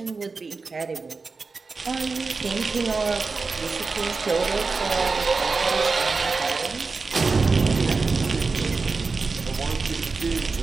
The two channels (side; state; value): left; quieter; 4.3 dB